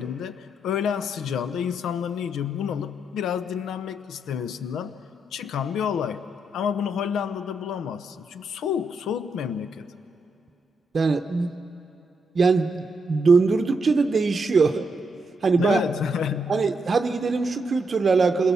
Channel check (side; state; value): both; normal; correlation 0.80